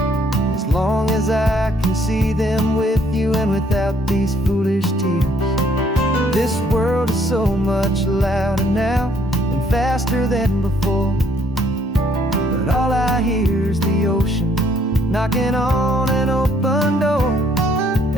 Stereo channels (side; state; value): both; normal; correlation 0.66